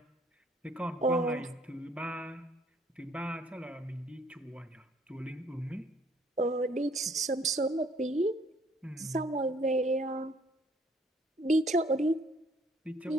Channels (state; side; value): normal; both; correlation 0.62